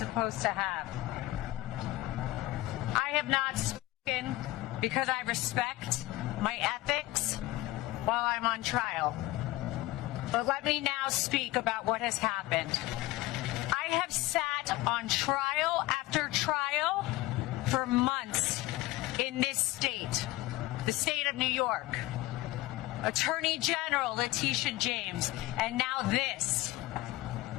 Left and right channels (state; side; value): quieter; right; 17.8 dB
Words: to have. I have not spoken because I respect my ethics while I'm on trial. But let me now speak about what has happened. I have sat on trial after trial for months in this state, the state of New York. Attorney General Letitia James, and now this.